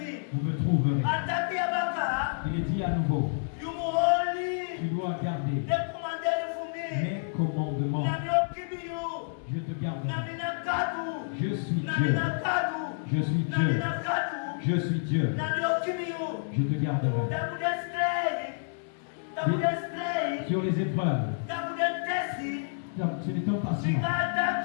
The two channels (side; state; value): right; silent; digital silence